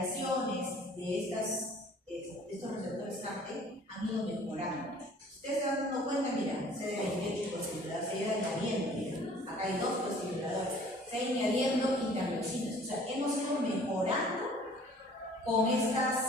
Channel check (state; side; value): normal; both; correlation 0.52